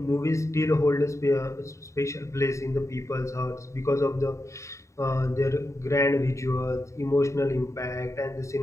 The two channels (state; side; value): late; right; 0.14 ms